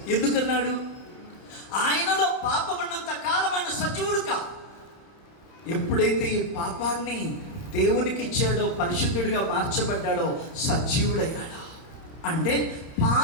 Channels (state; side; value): late; right; 31 ms